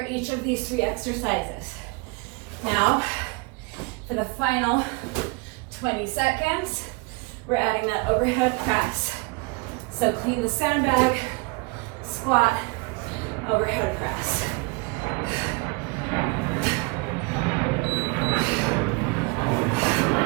each of these 3 exercises. Now, for the final 20 seconds, we're adding that overhead press. So clean the sandbag, squat, overhead press.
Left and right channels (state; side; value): quieter; left; 28.9 dB